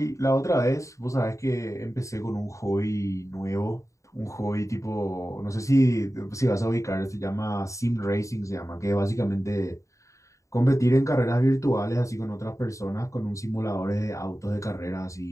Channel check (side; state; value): right; late; 0.15 ms